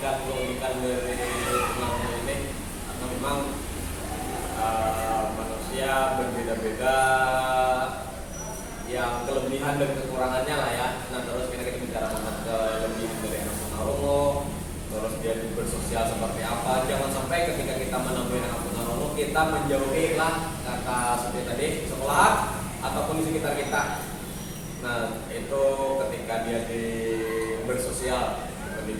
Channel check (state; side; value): identical; both; correlation 1.00